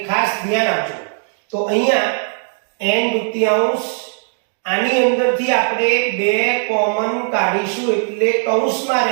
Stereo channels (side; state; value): left; silent; 56 dB below the other